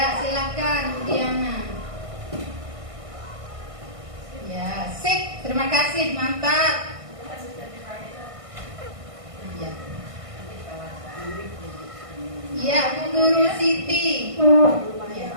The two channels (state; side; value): late; left; 1.5 ms